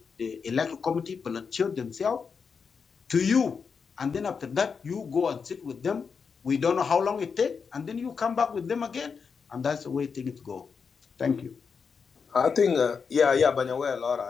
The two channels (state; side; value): quieter; right; 5.8 dB